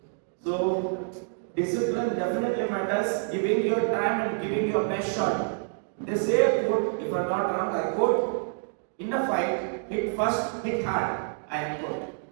So discipline definitely matters. Giving your time and giving your best shot. They say a quote, if I'm not wrong, I quote, in a fight, hit first, hit hard. I quote.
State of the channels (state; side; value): silent; left; digital silence